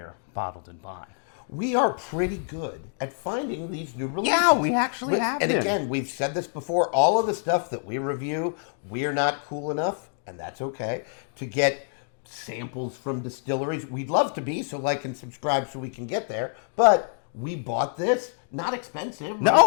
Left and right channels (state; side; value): silent; right; digital silence